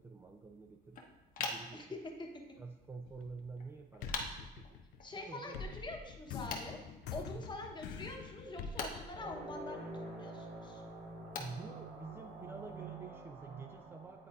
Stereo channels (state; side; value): normal; both; correlation 0.37